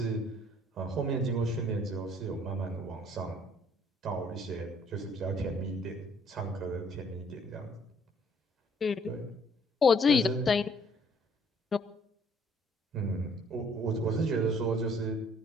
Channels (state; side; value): normal; both; correlation 0.61